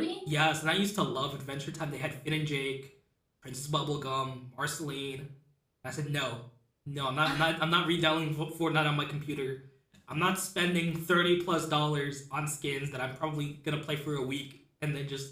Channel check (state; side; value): identical; both; correlation 1.00